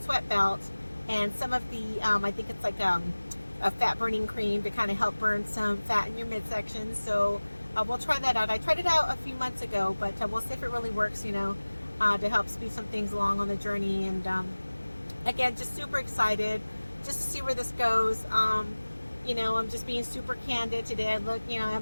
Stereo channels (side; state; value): both; inverted; correlation -1.00